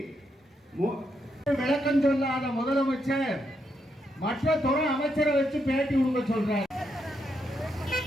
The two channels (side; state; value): both; normal; correlation 0.80